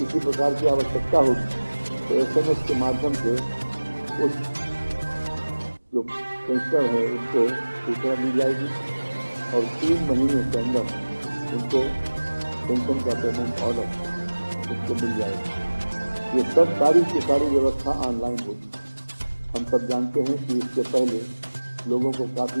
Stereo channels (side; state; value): both; inverted; correlation -1.00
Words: प्रकार की आवश्यकता होगी तो SMS के माध्यम से उस जो पेंशनर है उनको सूचना दी जाएगी और 3 महीने के अंदर उनको पेंशन का पेमेंट ऑर्डर उनको मिल जाएगा। ये सब सारी की सारी व्यवस्था ऑनलाइन होगी। हम सब जानते हैं कि इसके पहले लोगों को